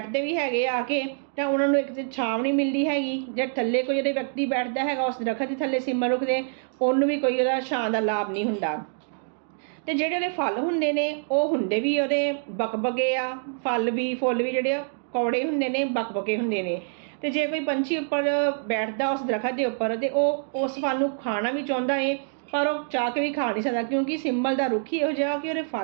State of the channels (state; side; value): silent; left; digital silence